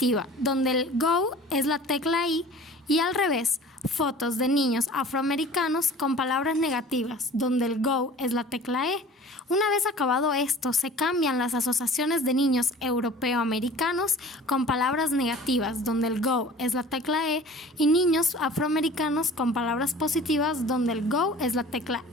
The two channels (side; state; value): both; normal; correlation 0.44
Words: donde el Go es la tecla I, y al revés, fotos de niños afroamericanos con palabras negativas, donde el Go es la tecla E. Una vez acabado esto, se cambian las asociaciones de niños europeo-americanos con palabras negativas, donde el Go es la tecla E, y niños afroamericanos con palabras positivas, donde el Go es la tecla